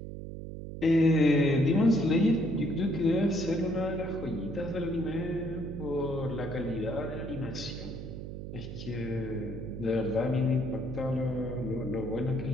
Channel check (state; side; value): noise; right; hum, 9 dB below the sound